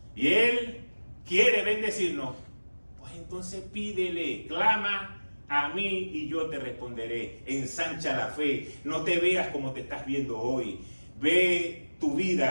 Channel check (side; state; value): both; inverted; correlation -1.00